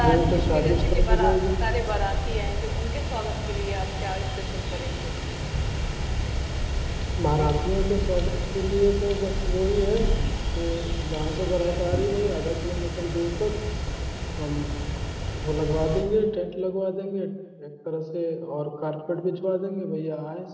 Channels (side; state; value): both; identical; correlation 1.00